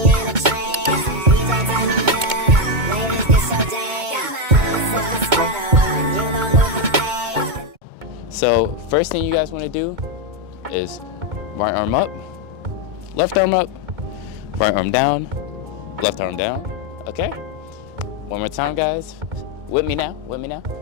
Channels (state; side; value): late; left; 2.2 ms